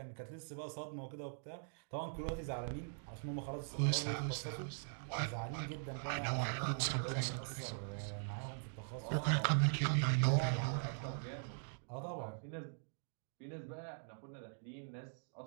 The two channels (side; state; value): left; silent; digital silence